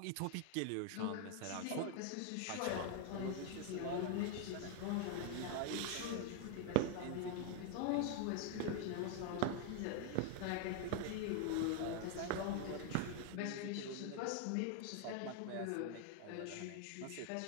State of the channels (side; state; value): both; different; correlation 0.01